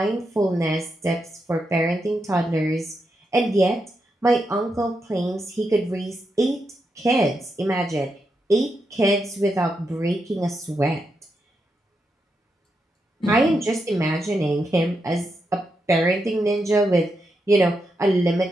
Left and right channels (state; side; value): normal; both; correlation 0.84